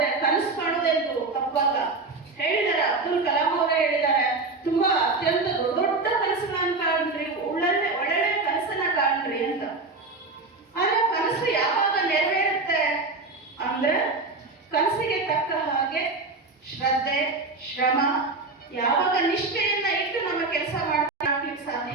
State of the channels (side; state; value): left; quieter; 3.6 dB